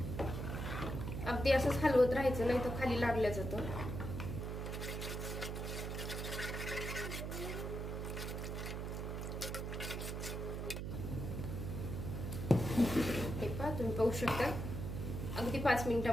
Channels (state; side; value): noise; right; hum, 4 dB below the sound